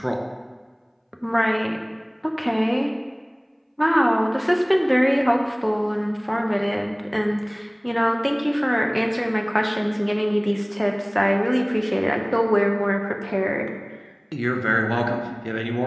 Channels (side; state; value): both; identical; correlation 1.00